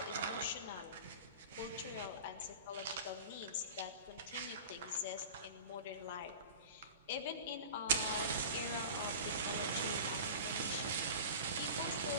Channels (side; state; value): both; inverted; correlation -0.36